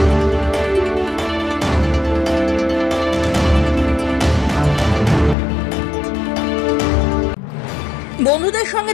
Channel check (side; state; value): right; drops out; at 5.4 s